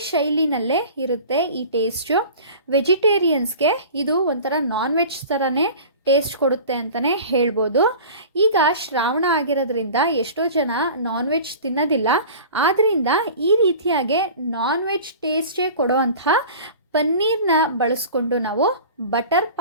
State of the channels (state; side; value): inverted; both; correlation -0.39